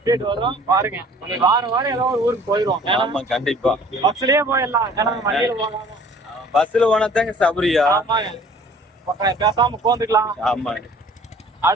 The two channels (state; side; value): normal; both; correlation 0.51